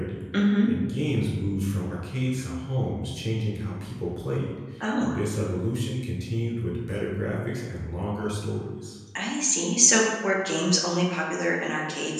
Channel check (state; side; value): identical; both; correlation 1.00